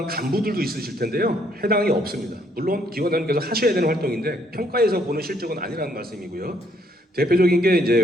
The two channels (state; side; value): normal; both; correlation 0.68